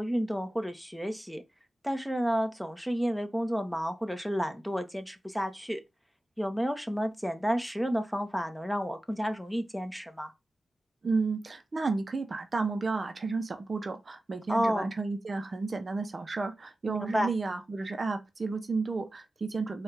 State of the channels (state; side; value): normal; both; correlation 0.95